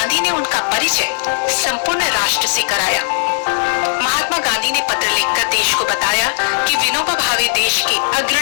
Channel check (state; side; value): silent; right; 68 dB below the other